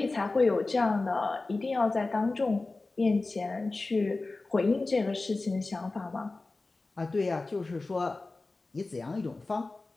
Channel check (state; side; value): quieter; right; 3.4 dB